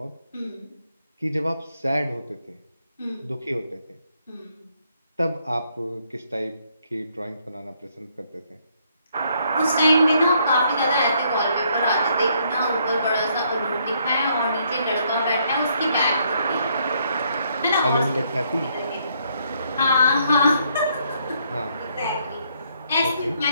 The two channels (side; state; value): both; inverted; correlation -0.71